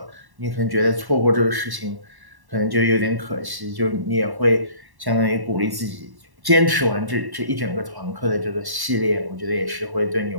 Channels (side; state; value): left; late; 1.1 ms